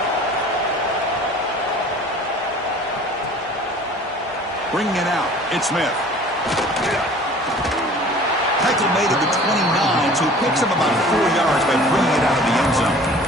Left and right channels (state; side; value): normal; both; correlation 0.47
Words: Bringing it out, it's Smith. Tackle made at the 29, so he picks up about 4 yards by bringing it out of the end zone.